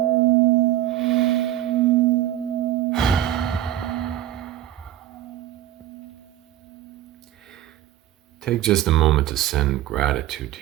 Take just a moment to send gratitude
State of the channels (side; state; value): left; quieter; 13.0 dB